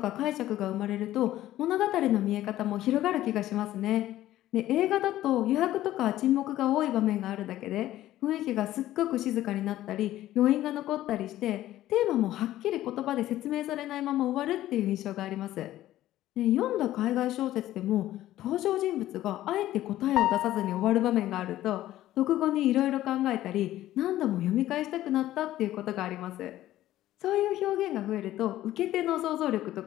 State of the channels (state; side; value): quieter; right; 14.2 dB